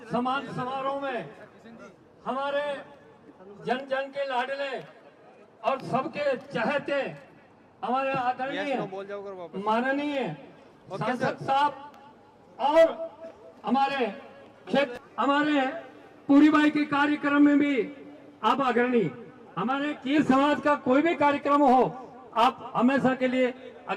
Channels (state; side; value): identical; both; correlation 1.00